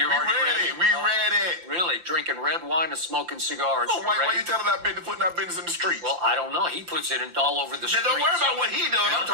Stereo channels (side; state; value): left; late; 5.8 ms